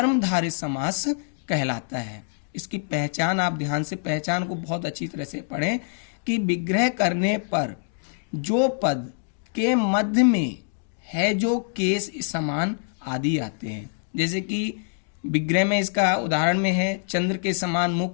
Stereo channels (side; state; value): right; silent; digital silence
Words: समास कहलाता है। इसकी पहचान आप ध्यान से, पहचान को बहुत अच्छी तरह से पढ़ें कि विग्रह करने पर जो पद के मध्य में है जो केस समान आदि आते हैं। जैसे कि विग्रह में इसका उदाहरण में है चंद्र के समान